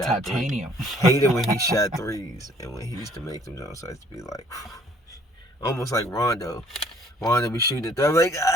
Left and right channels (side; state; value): both; normal; correlation 0.59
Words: shot titanium. Hated when he shot threes, and when he used to make them jumps, I used to be like, almost like Rondo. Rondo be shooting at them like,